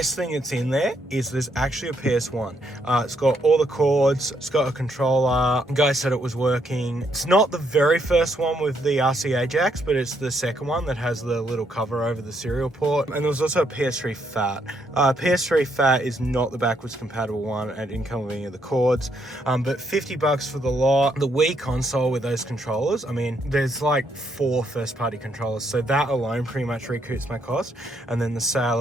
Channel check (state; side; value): normal; both; correlation 0.74